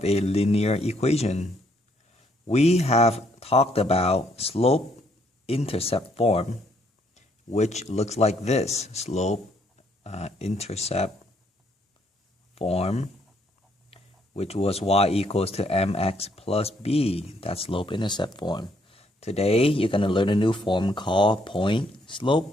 a linear equation. We have talked about slope-intercept form, which looks like this. Slope-intercept form, which was y equals to mx plus b. That's slope-intercept form. Today, you're going to learn a new form called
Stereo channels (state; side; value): normal; both; correlation 0.70